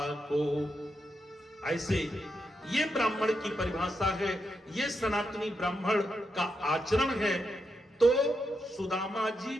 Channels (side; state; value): both; normal; correlation 0.84